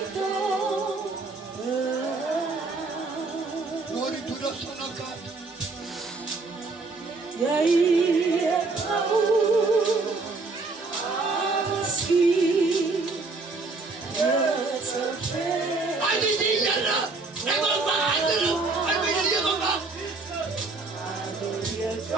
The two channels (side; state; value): left; quieter; 3.7 dB